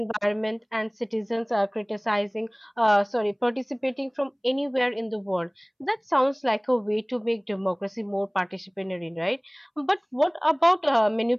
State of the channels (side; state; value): both; identical; correlation 1.00